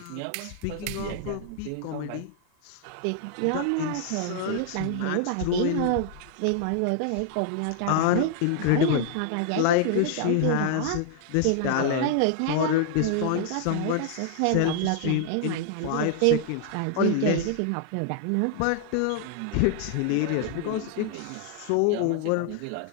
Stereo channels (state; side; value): different; both; correlation 0.00